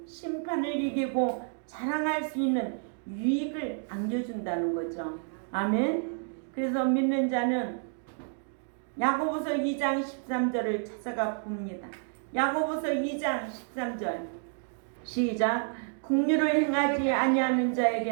심판을 이기고 자랑할 수 있는 유익을 안겨준다는 거죠. 아멘. 그래서 믿는 자는 야고보서 2장 13절을 찾아가 봅니다. 야고보서 2장 13절 시작. 긍휼을 행하지 아니하는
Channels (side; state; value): left; silent; 56 dB below the other